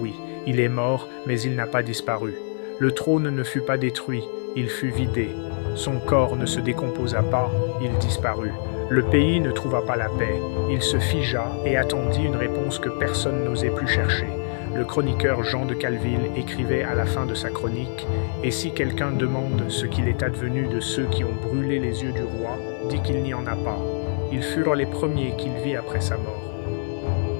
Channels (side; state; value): right; silent; 62 dB below the other